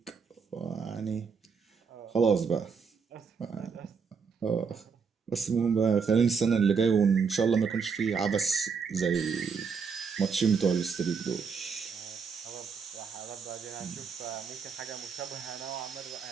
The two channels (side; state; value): left; quieter; 5.8 dB